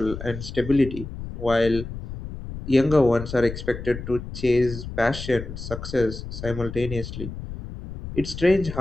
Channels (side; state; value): left; noise; rumble, 9 dB below the sound